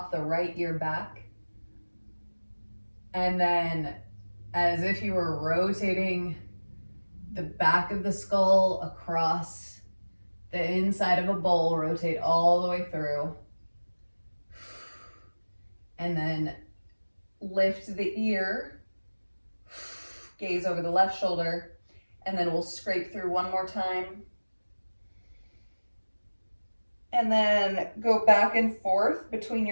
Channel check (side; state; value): both; inverted; correlation -1.00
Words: the right ear back, and then as if you were rotating the back of the skull across the inside of a bowl, rotate all the way through, and then lift the ear, gaze over the left shoulder, and then we'll scrape through one more time. And then go back and forth between